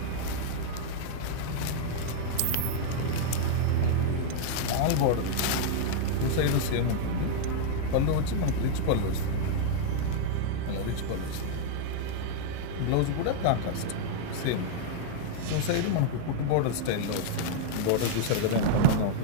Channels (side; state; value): both; different; correlation -0.01